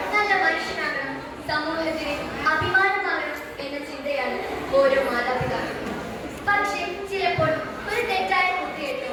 നല്ല മനുഷ്യനാകണം, സമൂഹത്തിന് അഭിമാനമാകണം എന്ന ചിന്തയാണ് ഓരോ മാതാപിതാക്കളും. പക്ഷേ ചിലപ്പോൾ ഒരു തെറ്റായ കുട്ടിയെട്ടോ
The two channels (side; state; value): both; identical; correlation 1.00